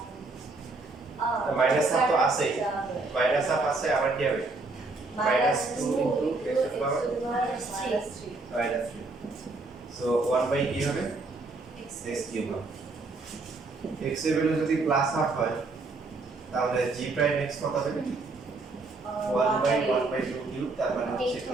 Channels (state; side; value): quieter; left; 3.5 dB